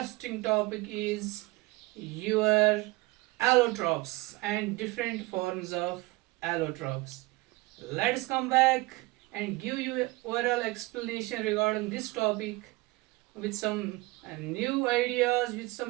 topic, is your allotropes and different forms of allotropes. Let's come back and give you overall explanation regarding this topic with some new ideas, with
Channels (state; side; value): quieter; left; 22.2 dB